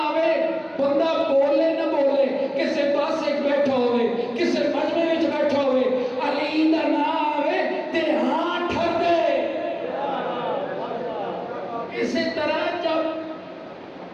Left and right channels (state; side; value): identical; both; correlation 1.00